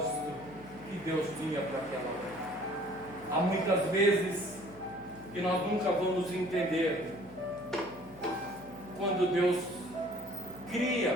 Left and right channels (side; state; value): left; noise; hum, 21 dB below the sound